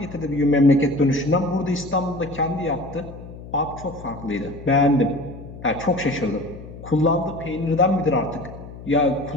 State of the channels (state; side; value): noise; left; hum, 14 dB below the sound